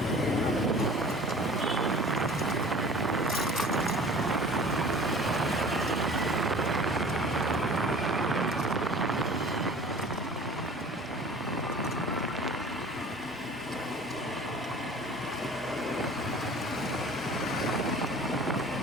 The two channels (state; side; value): normal; both; correlation 0.45